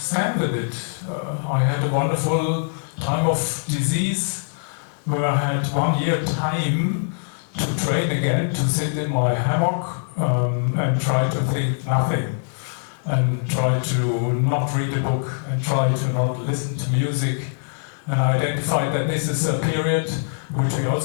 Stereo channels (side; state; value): right; silent; digital silence